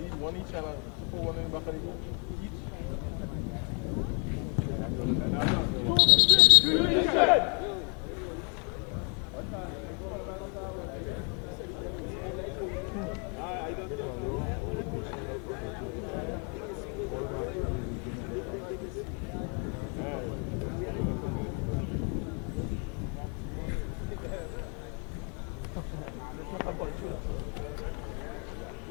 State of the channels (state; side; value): quieter; right; 37.0 dB